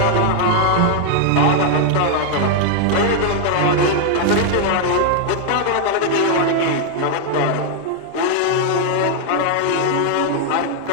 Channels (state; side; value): different; both; correlation 0.00